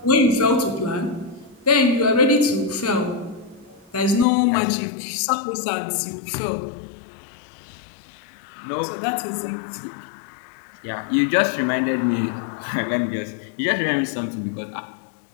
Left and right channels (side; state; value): right; drops out; at 4.2 s